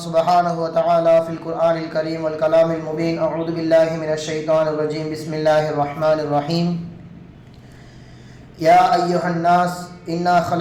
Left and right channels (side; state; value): both; identical; correlation 1.00